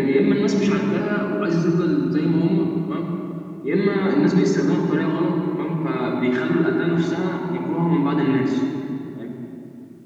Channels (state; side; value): identical; both; correlation 1.00